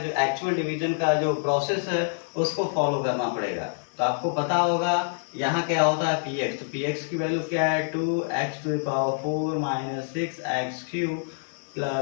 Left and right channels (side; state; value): right; silent; digital silence